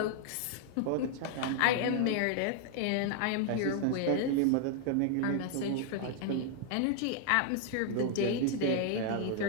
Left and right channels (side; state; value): both; different; correlation 0.00